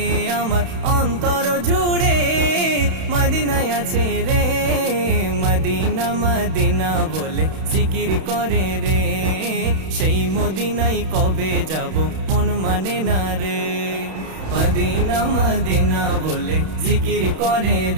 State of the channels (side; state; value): left; late; 31 ms